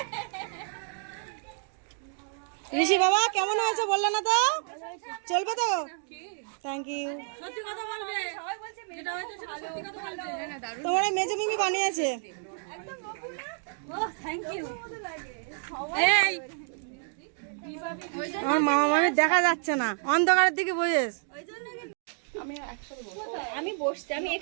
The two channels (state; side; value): silent; left; 58 dB below the other